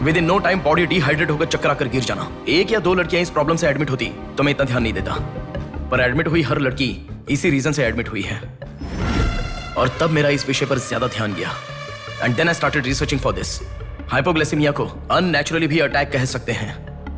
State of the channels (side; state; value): both; identical; correlation 1.00